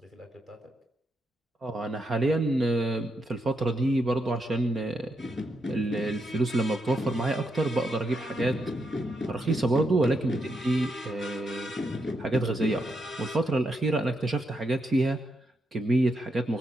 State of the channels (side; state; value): both; normal; correlation 0.82